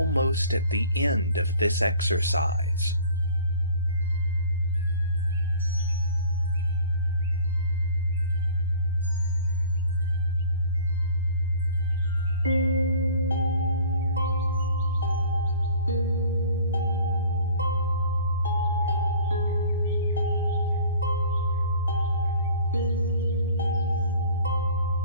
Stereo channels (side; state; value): both; inverted; correlation -0.48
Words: at the end of this exercise.